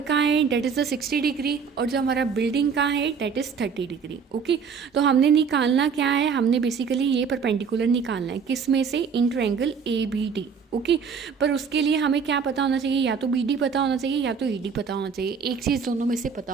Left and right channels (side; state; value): left; quieter; 6.1 dB